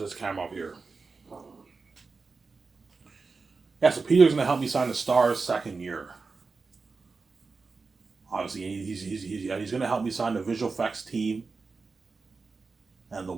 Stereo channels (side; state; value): left; quieter; 4.3 dB